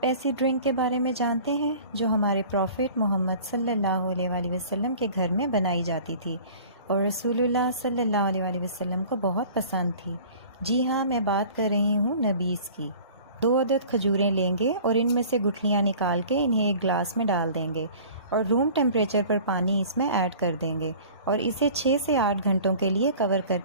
ایسی ڈرنک کے بارے میں جانتے ہیں جو ہمارے پروفٹ محمد صلی اللہ علیہ وآلہ وسلم کے گھر میں بنائی جاتی تھی اور رسول اللہ صلی اللہ علیہ وآلہ وسلم کو بہت پسند تھی؟ جی ہاں، میں بات کر رہی ہوں نبیذ کی۔ 2 عدد کھجوریں لیں گے اور ان میں سے گٹھلیاں نکال کے انہیں ایک گلاس میں ڈال دیں گے اور روم ٹیمپریچر پر پانی اس میں ایڈ کر دیں گے اور اسے 6 سے 8 گھنٹوں کے لیے کور کر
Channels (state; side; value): inverted; both; correlation -0.45